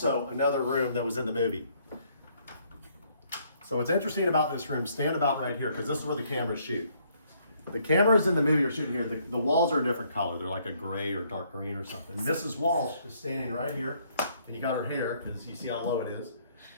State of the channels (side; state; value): both; inverted; correlation -0.67